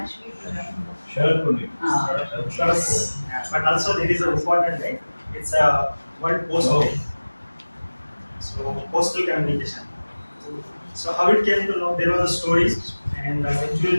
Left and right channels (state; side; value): inverted; both; correlation -1.00